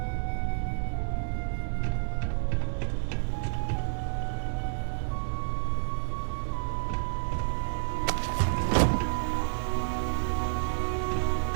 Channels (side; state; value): left; silent; digital silence